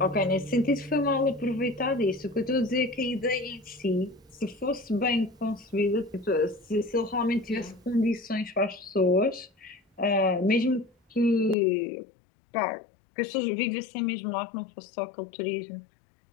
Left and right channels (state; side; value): drops out; right; at 11.6 s